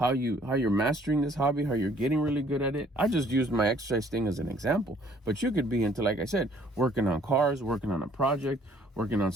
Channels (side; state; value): both; normal; correlation 0.60